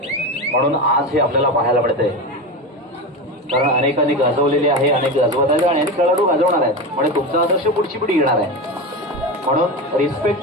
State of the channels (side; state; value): both; normal; correlation 0.21